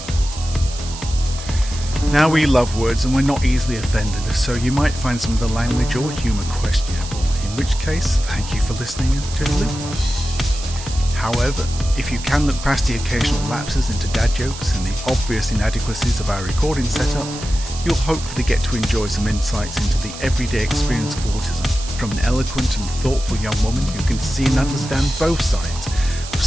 Now, we love words and we're not easily offended, so you might find some of the language or humour questionable, in which case, thank you for listening and toodaloo. However, if you can look past the occasional lapses into dad jokes and the obvious inadequacies of our recording setup, you'll hopefully get to enjoy some insights into the everyday experience of autism from an eloquent and thoughtful young woman who can see and understand both sides of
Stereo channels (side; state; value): right; noise; hiss, 12 dB below the sound